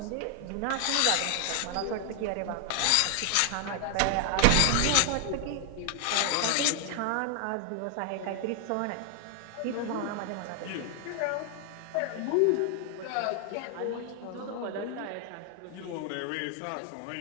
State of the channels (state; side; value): different; both; correlation 0.00